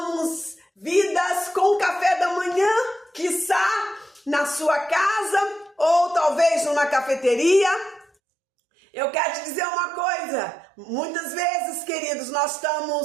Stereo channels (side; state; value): left; drops out; at 8.1 s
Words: vidas com café da manhã, quiçá na sua casa ou talvez numa cafeteria. Eu quero te dizer uma coisa: muitas vezes, queridos, nós